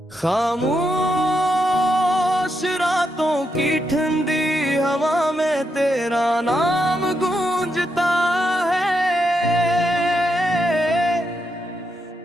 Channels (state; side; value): normal; both; correlation 0.82